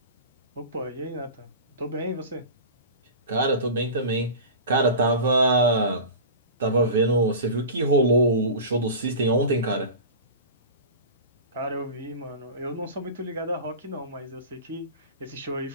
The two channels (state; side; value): inverted; both; correlation -0.32